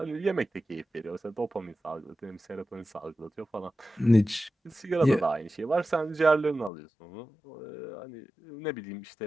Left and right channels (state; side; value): drops out; right; at 6.7 s